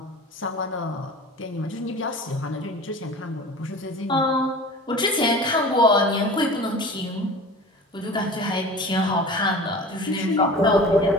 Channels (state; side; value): normal; both; correlation 0.38